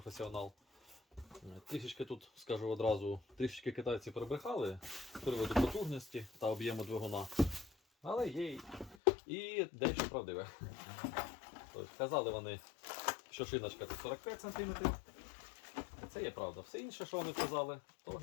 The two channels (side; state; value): right; drops out; at 9.0 s